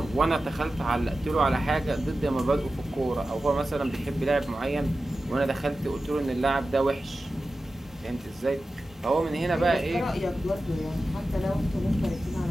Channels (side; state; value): both; normal; correlation 0.94